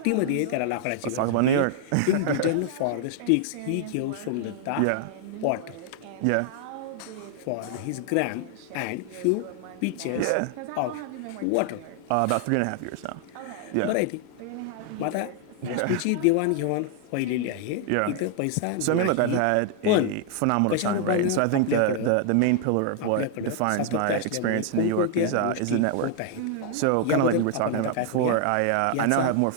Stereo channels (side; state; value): both; different; correlation 0.00